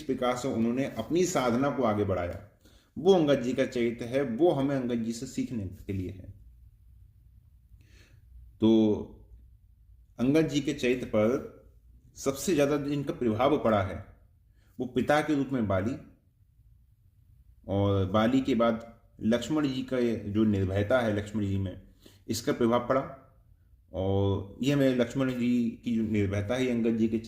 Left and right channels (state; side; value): identical; both; correlation 1.00